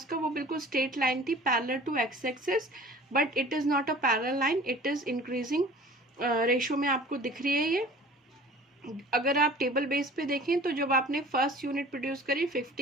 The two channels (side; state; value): both; normal; correlation 0.46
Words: का, वो बिल्कुल स्ट्रेट लाइन थी parallel to X axis, but it is not a parallel line, it is increasing ratio में आपको दिख रही है ये। अगर आप टेबल बेस पे देखें तो जब आपने फर्स्ट यूनिट प्रोड्यूस करी